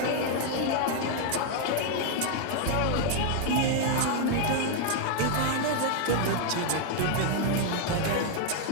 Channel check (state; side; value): different; both; correlation 0.00